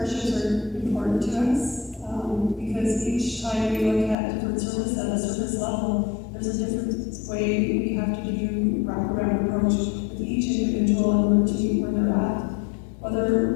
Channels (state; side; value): drops out; right; at 4.2 s